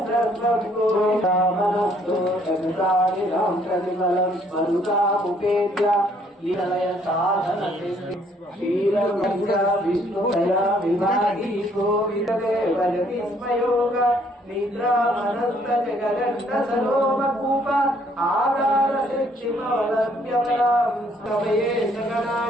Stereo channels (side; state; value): both; normal; correlation 0.64